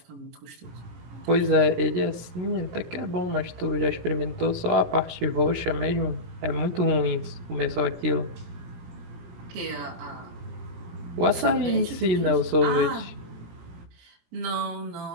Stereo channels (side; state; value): left; late; 17 ms